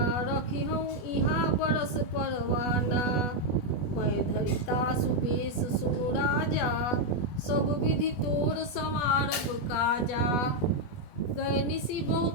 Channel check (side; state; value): right; late; 20 ms